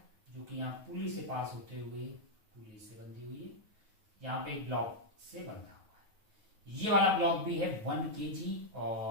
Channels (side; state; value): left; late; 9.3 ms